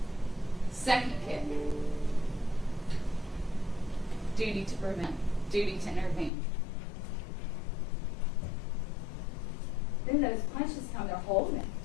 Second kick. Duty to prevent. Duty to intervene. Then those punches come, they're holding it.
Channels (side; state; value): right; drops out; at 6.3 s